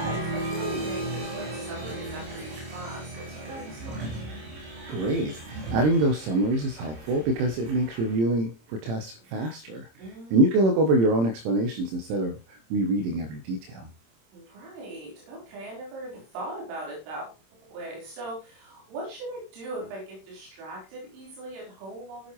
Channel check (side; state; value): left; late; 26 ms